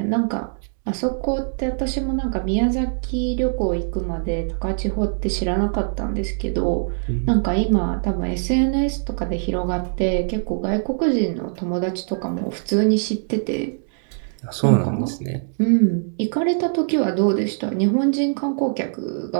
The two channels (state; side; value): silent; left; digital silence